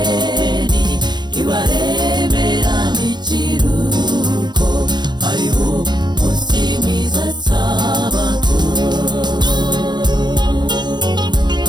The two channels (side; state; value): left; late; 0.21 ms